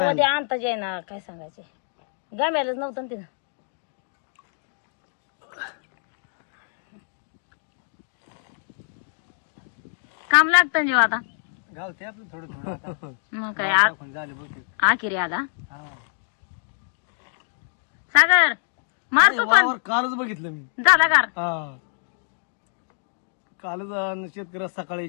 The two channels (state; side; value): silent; right; digital silence